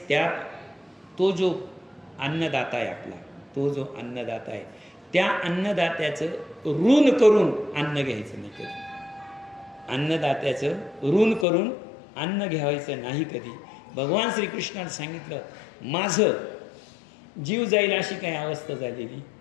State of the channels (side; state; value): right; drops out; at 11.5 s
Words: तो जो अन्नदाता आहे त्या अन्नदात्याचं ऋण करून अन्न घ्यायचं नाही कधी. अन्न घ्यायचं नाही कधी. भगवान श्रीकृष्णाने सांगितलं, माझं जीव जाईल अशी काही अवस्था झालेली